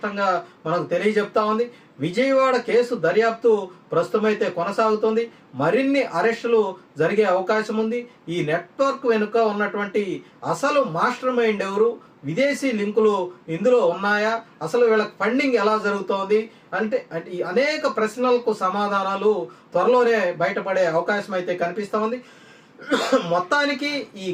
మనకు తెలియజెప్తా ఉంది. విజయవాడ కేసు దర్యాప్తు ప్రస్తుతమైతే కొనసాగుతుంది. మరిన్ని అరెస్టులు జరిగే అవకాశం ఉంది. ఈ నెట్వర్క్ వెనుక ఉన్నటువంటి అసలు మాస్టర్ మైండ్ ఎవరు, విదేశీ లింకులు ఇందులో ఉన్నాయా, అసలు వీళ్ళకి ఫండింగ్ ఎలా జరుగుతోంది అంటే ఈ అనేక ప్రశ్నలకు సమాధానాలు త్వరలోనే బయటపడే అవకాశం అయితే కనిపిస్తూ ఉంది. మొత్తానికి ఈ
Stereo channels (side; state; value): both; identical; correlation 1.00